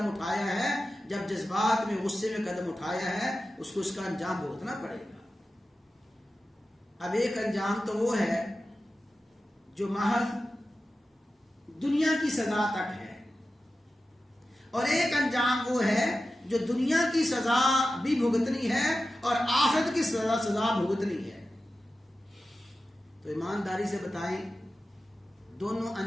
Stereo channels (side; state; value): both; normal; correlation 0.93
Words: اٹھایا ہے۔ جب جذبات میں غصے میں قدم اٹھایا ہے اس کو اس کا انجام بھگتنا پڑے گا۔ اب ایک انجام تو وہ ہے جو محض دنیا کی سزا تک ہے، اور ایک انجام وہ ہے جو دنیا کی سزا بھی بھگتنی ہے اور آخرت کی سزا بھگتنی ہے۔ تو ایمانداری سے بتائیں دونوں